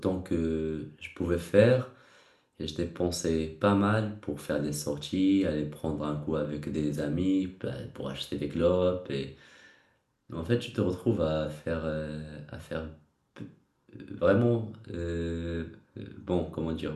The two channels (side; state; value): both; identical; correlation 1.00